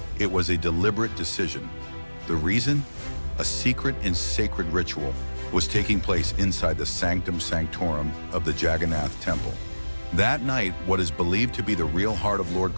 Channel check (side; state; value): both; inverted; correlation -1.00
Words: It was a deliberate decision. The reason? A secret and sacred ritual was taking place inside the sanctum sanctorum of the Jagannath Temple. That night, what is believed to be the real heart of Lord